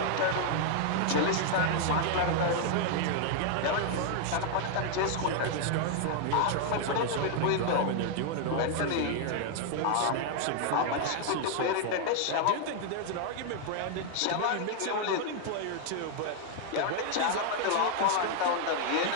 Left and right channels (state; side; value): different; both; correlation 0.00